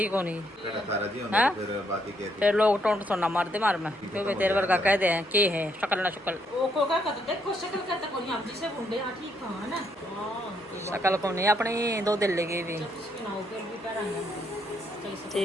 को नहीं। फिर लोग टोंट सोना मारते मार में, क्योंकि तेरे वर्गा कह दे के है शक्ल ना शक्ल। शक्ल को नहीं, अपनी 2 दिल लेगी भी,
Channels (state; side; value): normal; both; correlation 0.74